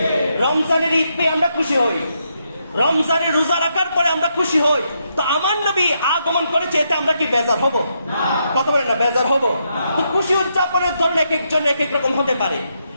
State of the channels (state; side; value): inverted; both; correlation -0.80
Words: রমজানের ঈদ পেয়ে আমরা খুশি হই, রমজানের রোজা রাখার পরে আমরা খুশি হই। তো আমার নবী আগমন করেছে, এতে আমরা কি বেজার হব? কথা বলেন না, বেজার হব? তো খুশি উদযাপনের ধরন এক একজন এক এক রকম হতে পারে।